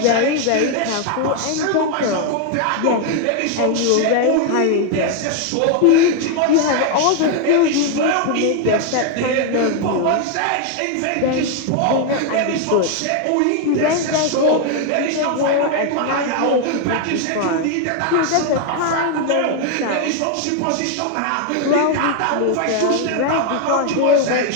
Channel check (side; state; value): both; different; correlation 0.00